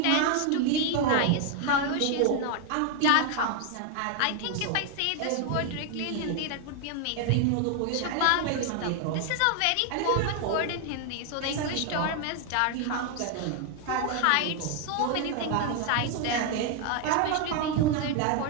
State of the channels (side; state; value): both; different; correlation 0.01